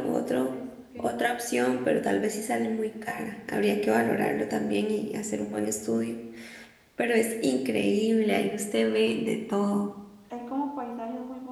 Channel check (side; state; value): both; identical; correlation 1.00